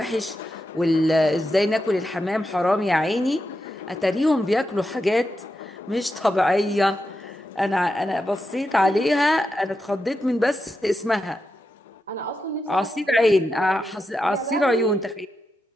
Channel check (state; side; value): normal; both; correlation 0.87